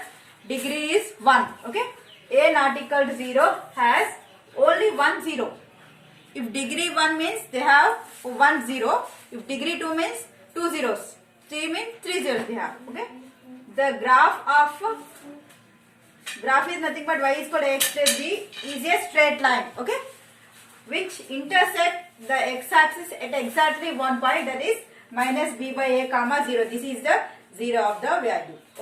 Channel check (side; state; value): both; identical; correlation 1.00